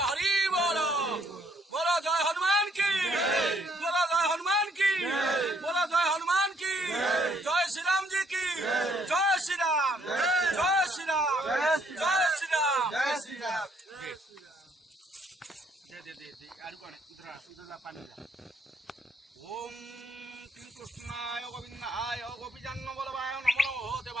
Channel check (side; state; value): both; normal; correlation 0.68